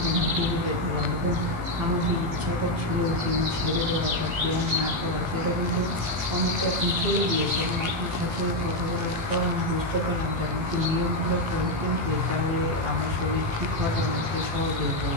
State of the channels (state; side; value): late; left; 18 ms